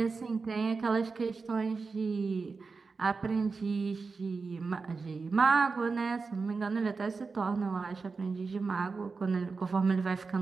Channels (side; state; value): left; quieter; 4.5 dB